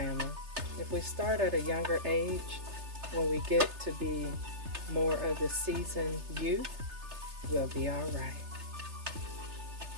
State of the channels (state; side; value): late; left; 3.3 ms